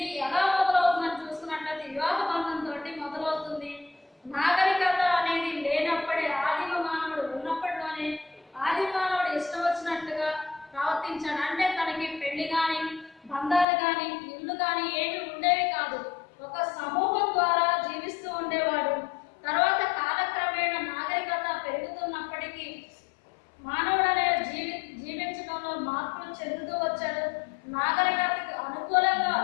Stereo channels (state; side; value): drops out; right; at 13.7 s